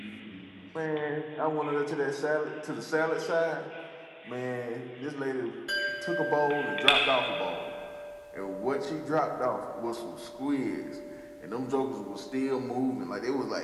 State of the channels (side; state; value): both; identical; correlation 1.00